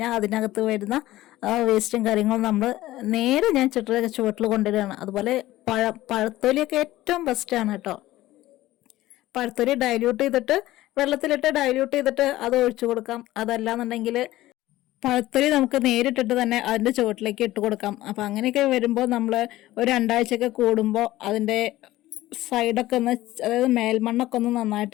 അതിനകത്ത് വരുന്ന വേസ്റ്റും കാര്യങ്ങളും നമ്മൾ നേരെ ഞാൻ ചെടിയുടെ ചുവട്ടിൽ കൊണ്ടുവരികയാണ്. അതുപോലെ പഴത്തൊലിയൊക്കെ ഏറ്റവും ബെസ്റ്റാണ് കേട്ടോ. പഴത്തൊലി ഡൈല്യൂട്ട് ചെയ്തിട്ട് വെള്ളത്തിലിട്ട് ഡൈല്യൂട്ട് ചെയ്തിട്ട് അത് ഒഴിച്ചു കൊടുക്കാം. അതല്ലാന്നുണ്ടെങ്കിൽ പഴത്തൊലി നമുക്ക് നേരിട്ടിട്ട് തന്നെ അതിൻ്റെ ചുവട്ടിലേക്ക് ഇട്ട് കൊടുക്കാം. അപ്പോൾ അങ്ങനെയൊക്കെ വരുമ്പോൾ നമ്മൾ ഒരു 2 ആഴ്ചയൊക്കെ കൂടുമ്പോൾ അതിൻ്റെ സൈഡൊക്കെ ഒന്ന്, അതായത് മേൽമണ്ണൊക്കെ ഒന്ന്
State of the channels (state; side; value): quieter; right; 16.1 dB